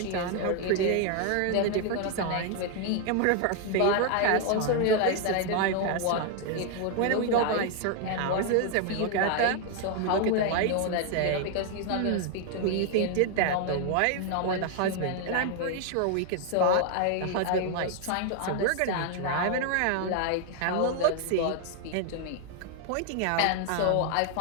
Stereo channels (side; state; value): both; different; correlation 0.00